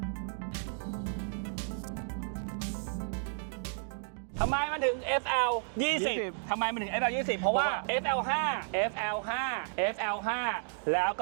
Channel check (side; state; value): left; silent; digital silence